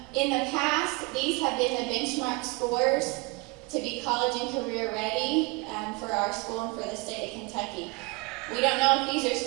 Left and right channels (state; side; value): quieter; left; 26.8 dB